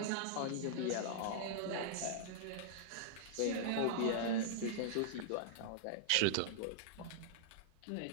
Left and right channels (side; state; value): both; different; correlation -0.02